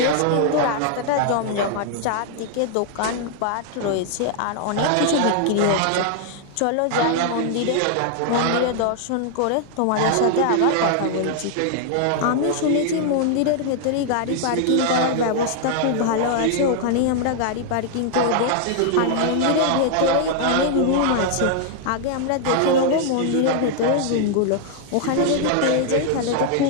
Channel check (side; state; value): both; different; correlation 0.00